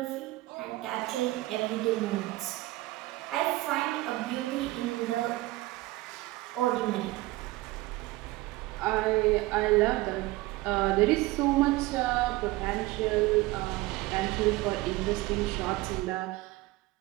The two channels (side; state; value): left; quieter; 19.3 dB